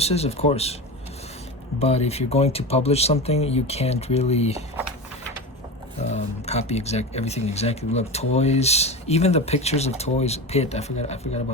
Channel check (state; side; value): normal; both; correlation 0.25